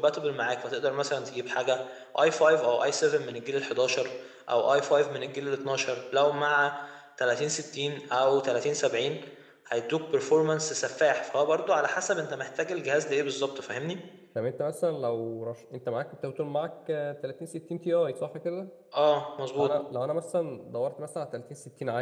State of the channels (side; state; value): both; identical; correlation 1.00